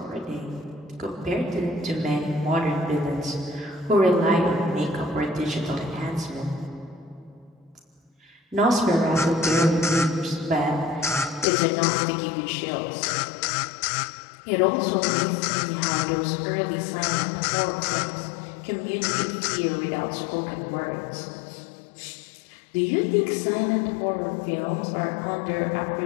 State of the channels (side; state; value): right; drops out; at 11.5 s